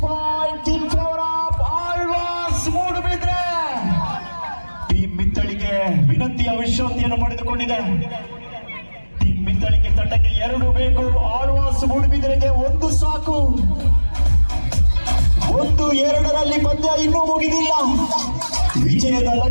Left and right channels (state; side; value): inverted; both; correlation -1.00